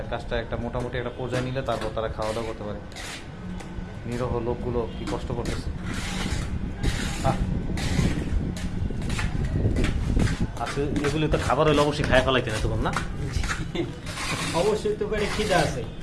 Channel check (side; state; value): both; identical; correlation 1.00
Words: কাজটা একটা মোটামুটি একটা পর্যায়ে নিলে তারপর তারা খাওয়া দাওয়া করতে পারে। নিরহ লোকগুলো কি কষ্ট করতেছে। আচ্ছা, এগুলি তো খাবার হইলে অবশ্যই খায় ফেলাইতে না তখন না? অবশ্যই তো পেটে খিদা আছে।